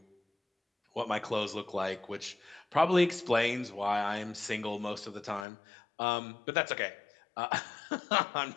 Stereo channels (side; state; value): right; drops out; at 5.5 s